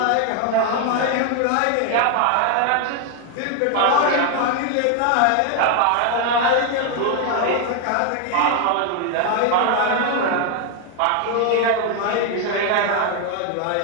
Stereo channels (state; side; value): different; both; correlation 0.01